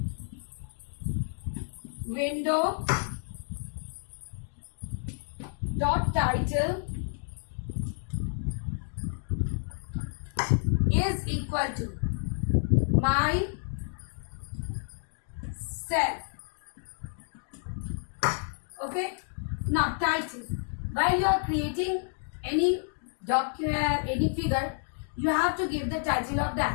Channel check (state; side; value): silent; right; digital silence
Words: window dot title is equal to my self. Okay. Now title. While you are creating any document, any figure, you have to give the title of